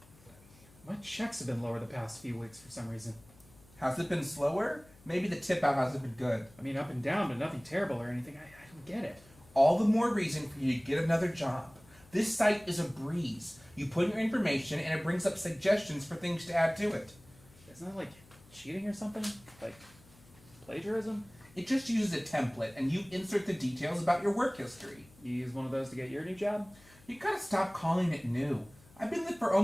My checks have been lower the past few weeks for some reason. Has it been slower? Maybe the tip out hasn't been good. I mean, up and down, but nothing terrible or anything. I don't get it. All the more reason for you to get another job. This site is a breeze. You put in your information and it brings up suggestions for things to add to it. Isn't that like cheating or something? Like plagiarism? It just uses a template and you insert the details about your work history. You use one of those to get your new job? You gotta stop calling it new. I've been there for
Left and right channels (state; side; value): noise; left; hum, 26 dB below the sound